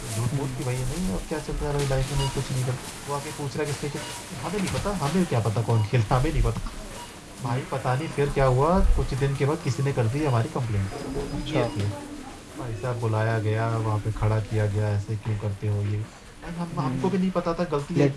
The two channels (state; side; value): identical; both; correlation 1.00